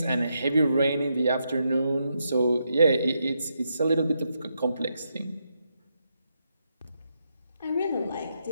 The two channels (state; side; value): inverted; both; correlation -0.82